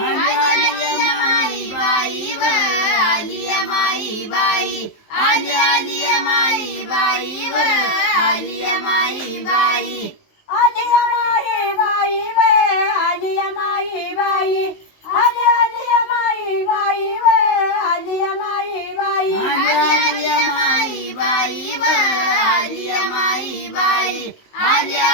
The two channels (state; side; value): late; right; 19 ms